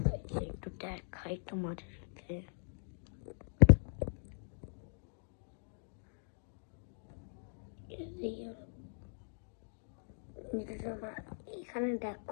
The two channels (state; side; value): silent; right; digital silence